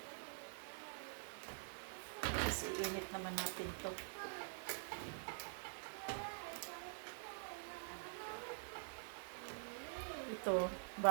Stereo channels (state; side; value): silent; left; digital silence